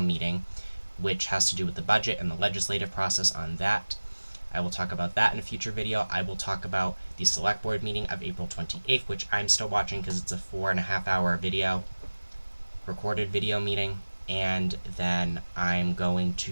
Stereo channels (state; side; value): inverted; both; correlation -1.00